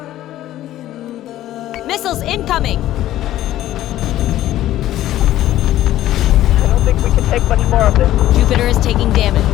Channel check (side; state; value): right; quieter; 13.7 dB